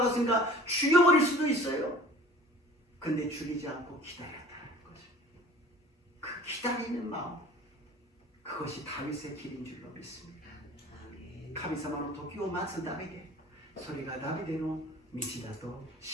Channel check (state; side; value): normal; both; correlation 0.45